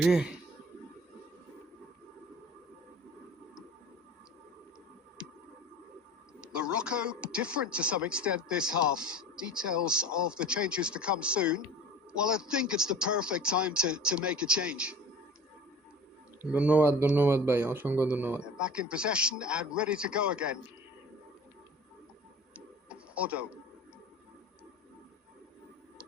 Morocco different to some extent this half. Details of the changes to come soon. Well, I think it's the perfect time to make a change. ধন্যবাদ ভাই অসংখ্য ধন্যবাদ They're back in possession and ready to go again. Odo.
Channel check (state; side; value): normal; both; correlation 0.41